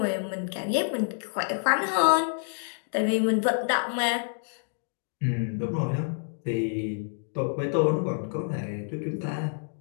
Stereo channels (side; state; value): right; silent; digital silence